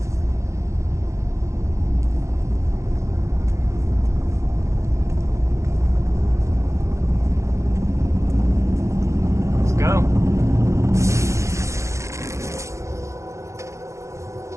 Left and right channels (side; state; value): left; late; 0.14 ms